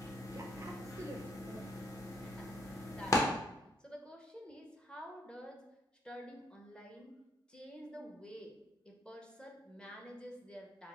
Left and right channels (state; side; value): normal; both; correlation 0.70